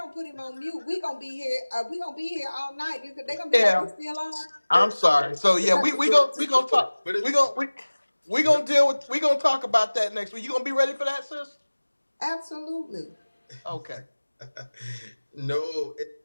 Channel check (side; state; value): both; inverted; correlation -1.00